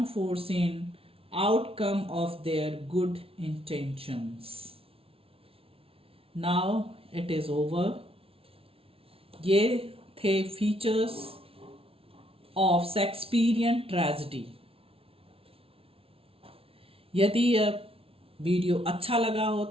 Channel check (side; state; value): left; late; 0.27 ms